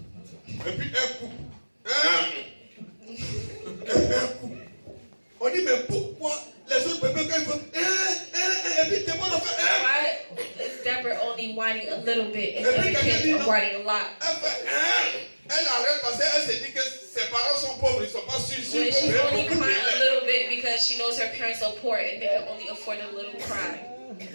et puis un coup, un coup. On dit, mais pourquoi les autres bébés, quand ils font, et puis Déborah fait, why is Deborah only whining a little bit and other kids are whining a lot? elle fait, elle arrête parce qu'elle se dit que ses parents sont pauvres, ils ne sont pas sûrs. When she's only crying a little bit because she knows her parents are poor and they can only afford a little cry.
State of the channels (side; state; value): both; inverted; correlation -1.00